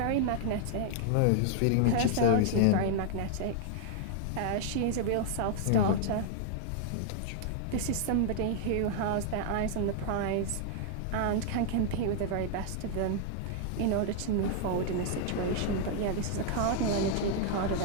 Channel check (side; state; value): both; different; correlation -0.01